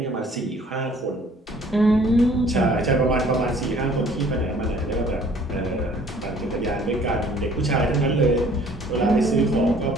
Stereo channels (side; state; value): both; normal; correlation 0.55